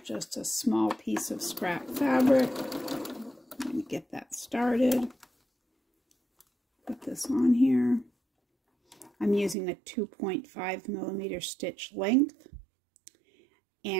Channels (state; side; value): drops out; left; at 9.6 s